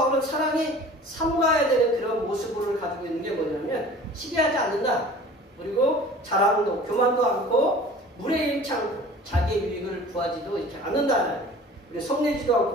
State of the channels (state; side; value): normal; both; correlation 0.44